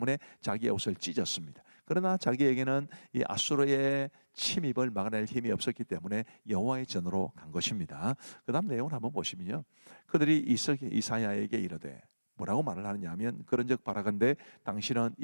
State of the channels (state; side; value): inverted; both; correlation -1.00